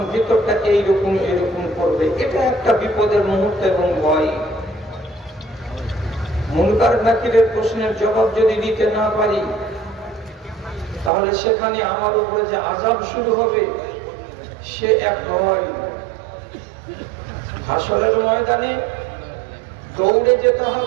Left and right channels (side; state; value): left; drops out; at 11.1 s